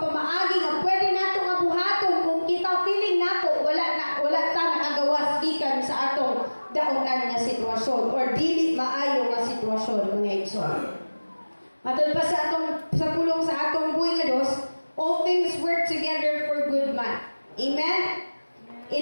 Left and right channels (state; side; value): inverted; both; correlation -1.00